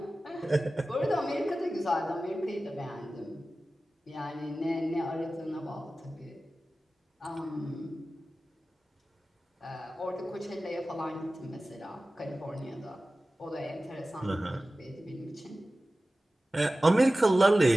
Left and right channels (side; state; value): both; normal; correlation 0.96